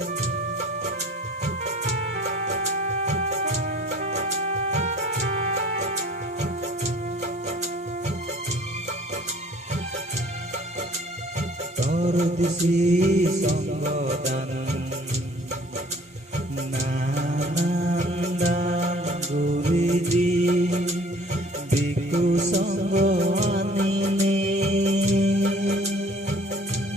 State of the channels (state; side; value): normal; both; correlation 0.52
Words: তোর দিছি সংগদান নানান দান গুৰি দি বিকু সংগ আনিলে